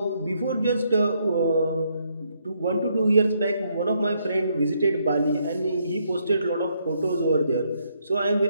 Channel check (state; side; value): inverted; both; correlation -0.74